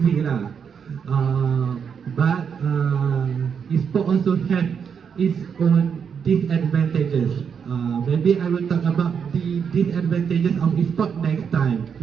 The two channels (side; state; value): left; quieter; 6.9 dB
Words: lah. But e-sport also have its own disadvantages. Maybe I will talk about the disadvantages of e-sport next time